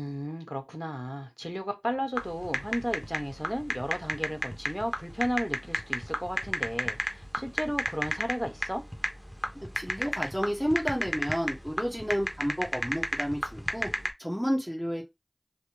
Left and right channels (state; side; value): identical; both; correlation 1.00